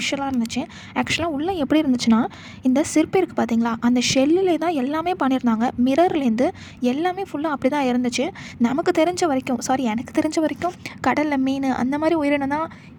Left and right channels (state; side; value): identical; both; correlation 1.00